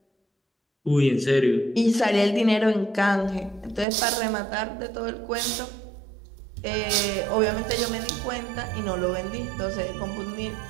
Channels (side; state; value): left; drops out; at 3.9 s